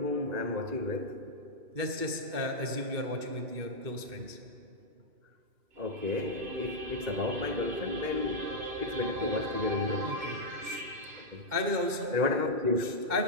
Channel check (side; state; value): left; late; 2.2 ms